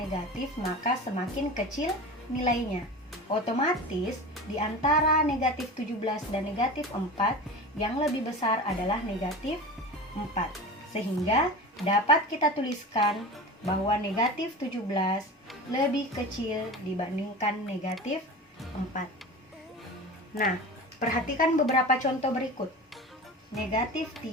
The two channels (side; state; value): both; normal; correlation 0.31